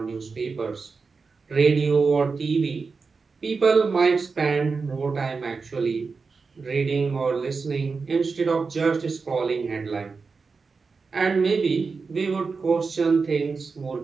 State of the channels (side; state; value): left; quieter; 4.7 dB